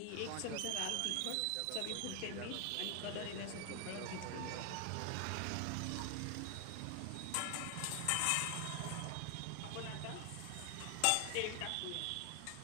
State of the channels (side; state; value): both; different; correlation 0.00